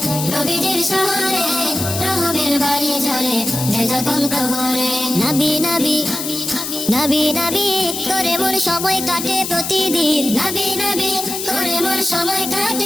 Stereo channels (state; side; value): noise; left; hiss, 5 dB below the sound